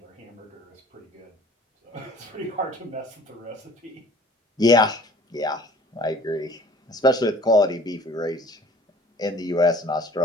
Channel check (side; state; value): both; normal; correlation 0.49